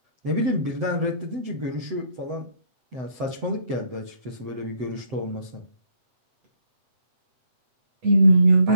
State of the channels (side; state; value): left; late; 7.9 ms